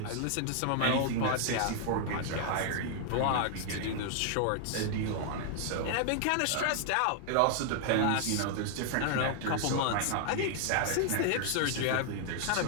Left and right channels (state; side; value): different; both; correlation 0.00